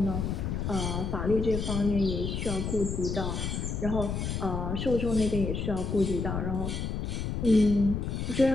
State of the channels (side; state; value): left; noise; rumble, 2 dB below the sound